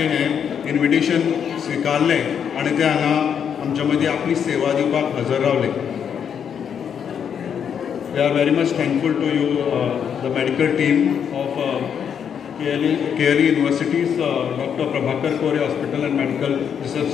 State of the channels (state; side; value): quieter; right; 7.9 dB